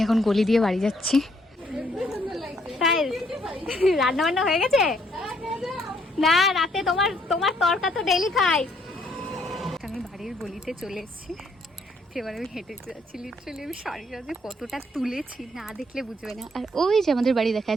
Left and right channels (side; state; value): both; normal; correlation 0.68